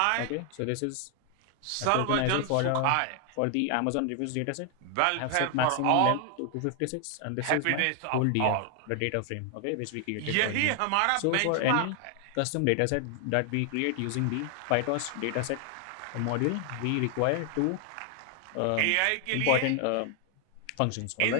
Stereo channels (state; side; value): different; both; correlation 0.00